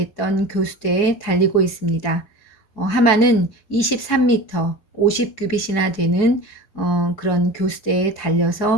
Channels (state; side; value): late; right; 4.7 ms